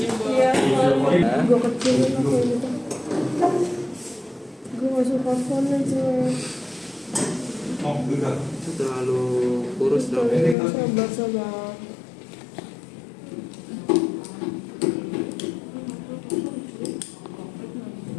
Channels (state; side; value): drops out; right; at 10.6 s